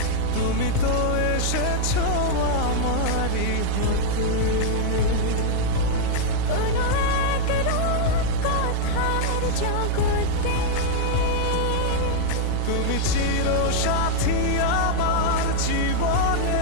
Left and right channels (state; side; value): different; both; correlation 0.00